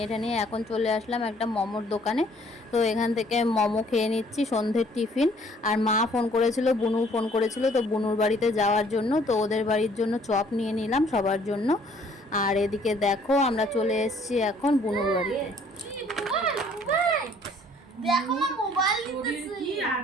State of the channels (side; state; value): both; normal; correlation 0.59